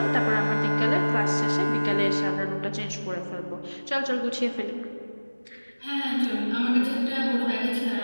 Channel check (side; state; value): both; inverted; correlation -1.00